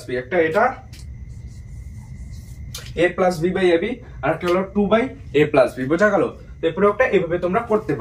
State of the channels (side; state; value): both; identical; correlation 1.00